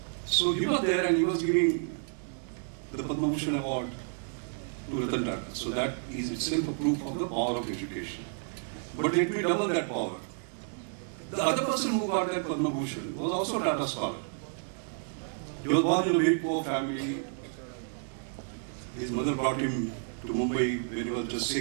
So he was there and he was giving the Padma Bhushan award to Ratan Tata. So that is itself a proof of the power of education. But let me double that power. The other person who got that Padma Bhushan was also a Tata scholar. He was born in a very poor family. His mother brought him to Mumbai when he was just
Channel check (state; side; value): silent; left; 57 dB below the other